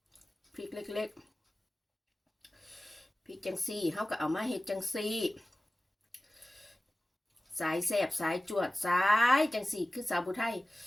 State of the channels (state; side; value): normal; both; correlation 0.97